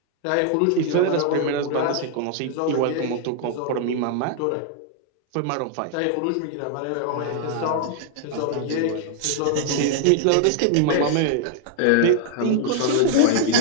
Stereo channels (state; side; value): different; both; correlation 0.00